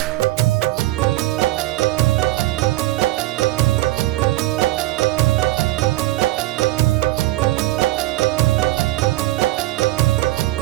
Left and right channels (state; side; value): quieter; left; 17.3 dB